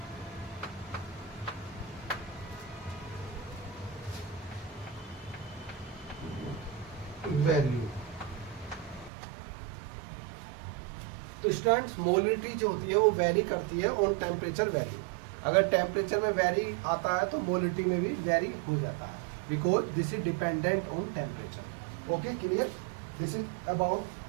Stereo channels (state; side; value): drops out; left; at 9.1 s